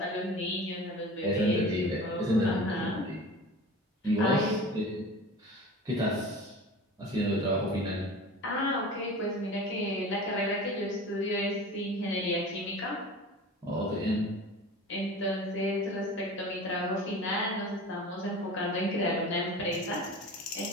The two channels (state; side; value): normal; both; correlation 0.37